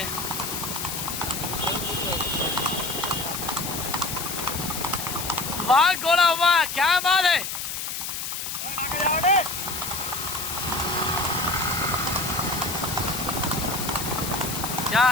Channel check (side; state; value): left; noise; hiss, 5 dB below the sound